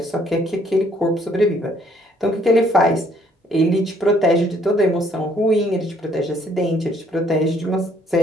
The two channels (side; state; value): both; normal; correlation 0.64